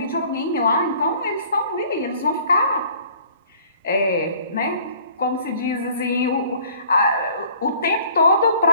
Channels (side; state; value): both; inverted; correlation -0.54